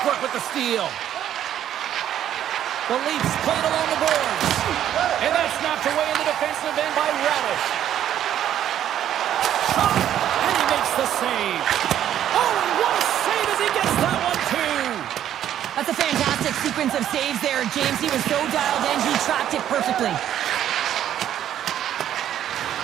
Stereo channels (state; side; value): quieter; left; 10.9 dB